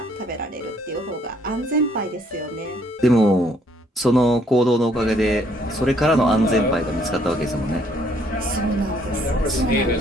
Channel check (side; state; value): both; normal; correlation 0.66